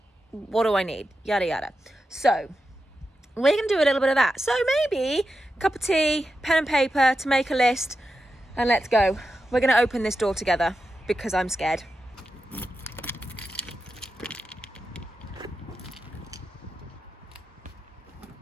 What do I need? Yada yada. So we're gonna do a little bit of that. So maybe a cup of tea, pen and paper to make a list, and let's go. We're gonna open this door together because I'm scared.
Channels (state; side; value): normal; both; correlation 0.90